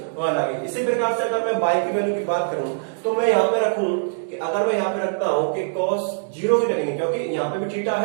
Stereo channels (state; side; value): silent; left; digital silence